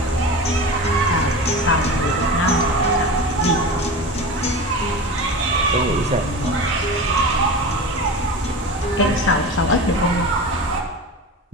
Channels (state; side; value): normal; both; correlation 0.30